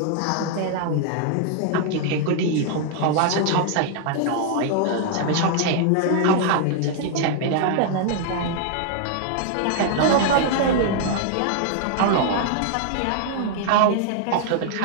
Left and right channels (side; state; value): both; different; correlation 0.00